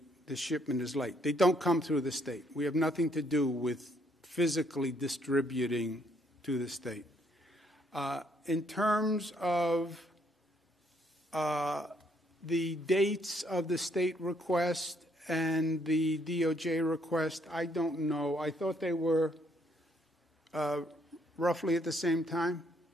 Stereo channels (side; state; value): both; normal; correlation 0.69